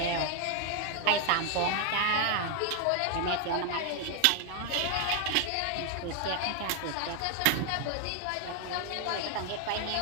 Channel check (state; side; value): different; both; correlation 0.00